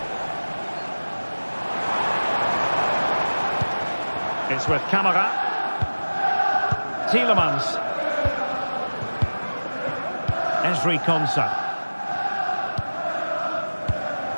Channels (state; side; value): inverted; both; correlation -1.00